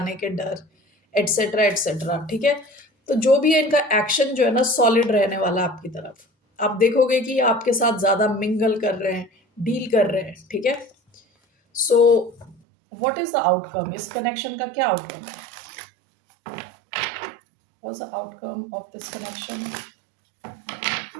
के डर एटसेट्रा एटसेट्रा। ठीक है। तो जो भी है इनका एक्शन जो है ना सॉलिड रहने वाला आपकी तरफ। आप देखोगे कि आपके साथ ज्यादा मिंगल कर रहे हैं डील कर रहे हैं। ठीक है। So what is the outcome. इस कनेक्शन का क्या आउटकम है। What's the outcome of this connection?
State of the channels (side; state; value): left; drops out; at 12.6 s